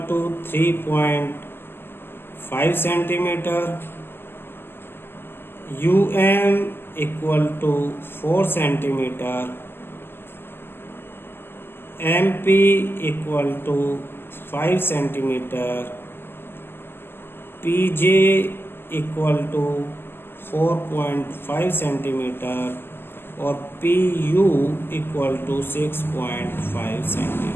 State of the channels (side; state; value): right; late; 0.11 ms